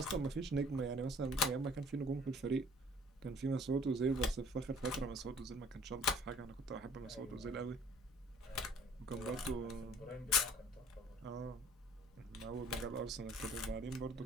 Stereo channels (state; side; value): normal; both; correlation 0.53